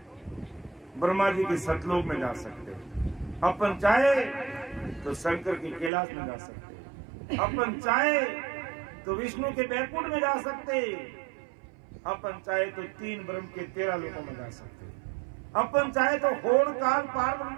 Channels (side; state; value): left; drops out; at 5.9 s